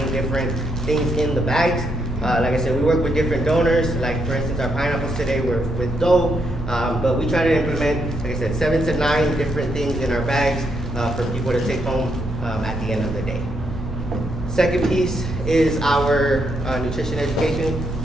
different things in the bags. Like I said, we work with different donors. Like for instance, our pineapples today were with dough, but we try to implement, like I said, 7 to 9 different things in our bags for people to take home at the end of the day. Second piece is our nutrition education.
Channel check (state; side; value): normal; both; correlation 0.77